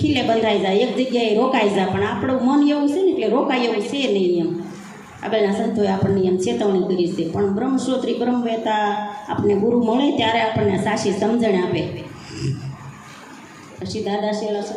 ખીલે બંધાઈ જાય, એક જગ્યાએ રોકાઈ જાય. પણ આપણું મન એવું છે ને એટલે રોકાય એવું છે નહીં એમ. આગળના સંતોએ આપણને એમ ચેતવણી કરી છે. પણ બ્રહ્મશ્રોત્રી બ્રહ્મવેતા આપણને ગુરુ મળે ત્યારે આપણને સાચી સમજણ આપે. પછી દાદા શેલા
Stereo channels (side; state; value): both; identical; correlation 1.00